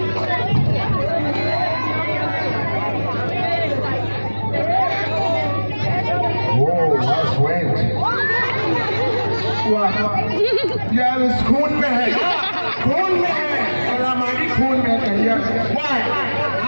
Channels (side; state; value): both; inverted; correlation -1.00